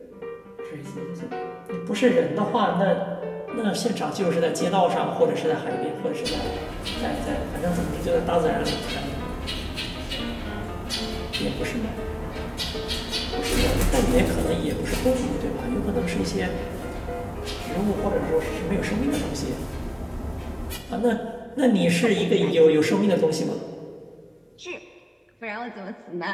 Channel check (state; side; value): identical; both; correlation 1.00